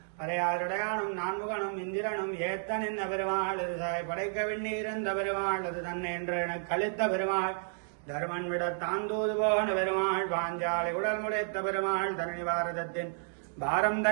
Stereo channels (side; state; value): left; silent; digital silence